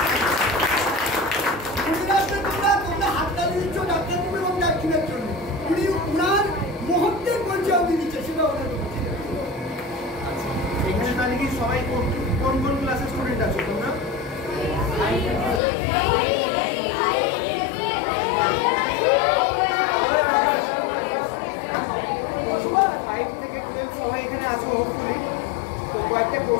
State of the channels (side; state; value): right; drops out; at 15.6 s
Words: এখানে তাহলে কি সবাই কোন কোন ক্লাসের স্টুডেন্ট আছো তোমরা? সবাই এখানে আছো হোপফুলি। তো কয়েকটা